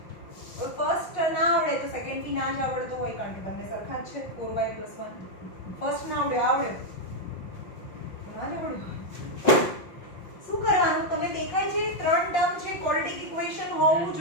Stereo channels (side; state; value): right; late; 5.7 ms